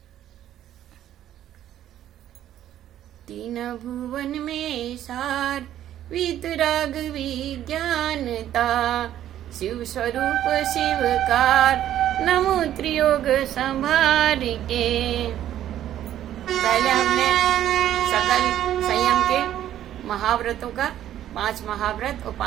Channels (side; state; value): left; quieter; 11.8 dB